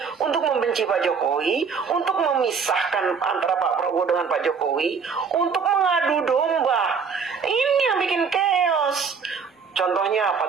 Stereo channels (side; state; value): left; quieter; 5.7 dB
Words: untuk membenci Pak Jokowi, untuk memisahkan antara Pak Prabowo dengan Pak Jokowi, untuk mengadu domba. Ini yang bikin chaos. Contohnya